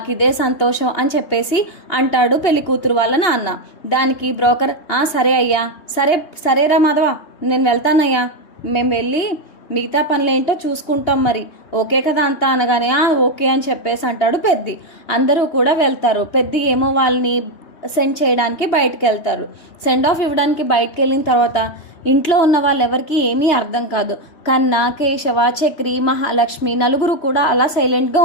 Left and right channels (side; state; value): right; late; 3.2 ms